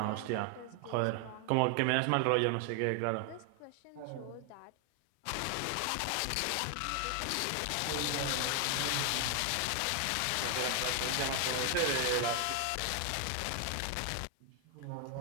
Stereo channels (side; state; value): both; different; correlation 0.00